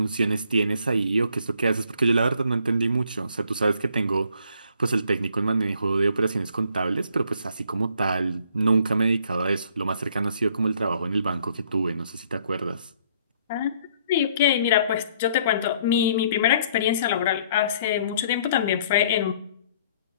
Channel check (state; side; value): inverted; both; correlation -0.63